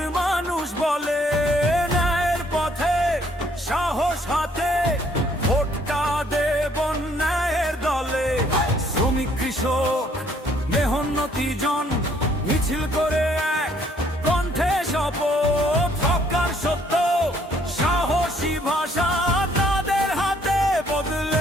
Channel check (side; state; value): both; normal; correlation 0.64